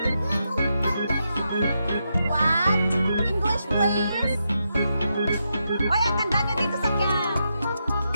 What? English, please. Oy, ang ganda nyo dito sa cam.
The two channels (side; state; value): both; inverted; correlation -0.84